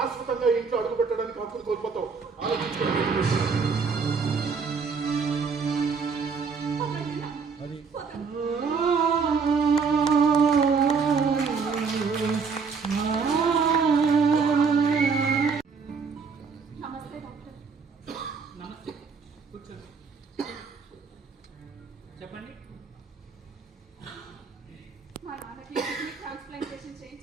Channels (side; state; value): left; quieter; 5.3 dB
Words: ఇంట్లో అడుగు పెట్టడానికి హక్కులు కోల్పోతావు. ఆలోచించుకోండి. పదండి నాన్న. పదండి. నమస్తే డాక్టర్. నమస్తే, కూర్చోండి. చెప్పండి. మా నాన్నకి కిడ్నీ ట్రాన్స్ప్లాంటేషన్